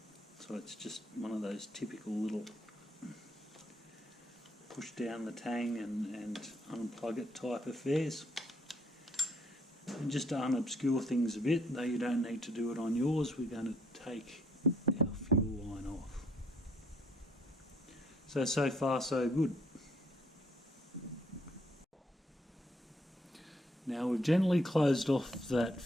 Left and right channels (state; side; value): normal; both; correlation 0.67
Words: So it's just one of those typical little push down the tang and unplug it type affairs. And just to unobscure things a bit, though you don't need to do it on yours, we're going to take our fuel line off. So far so good. Now we've gently closed off that